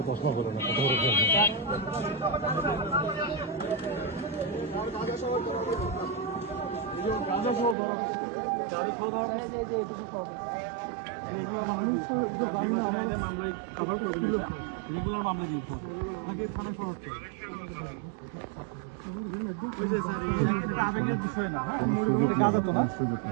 চশমা করো না, কথা বলে রেগুলার মামলা দিয়ে তাকে থানায় ফরওয়ার্ড করে। আবেগের বিষয় না, হ্যাঁ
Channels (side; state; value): left; drops out; at 7.8 s